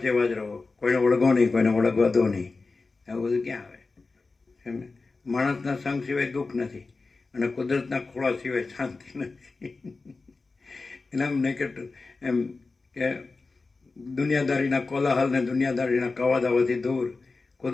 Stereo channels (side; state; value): right; quieter; 3.9 dB